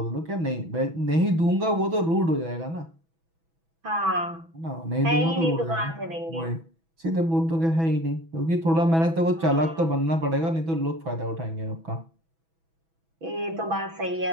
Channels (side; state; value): left; late; 6.1 ms